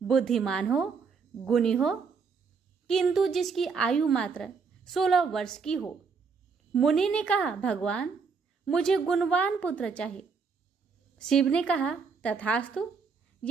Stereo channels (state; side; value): quieter; left; 5.3 dB